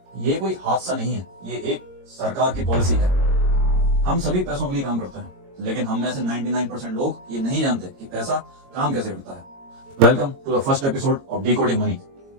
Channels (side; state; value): left; late; 22 ms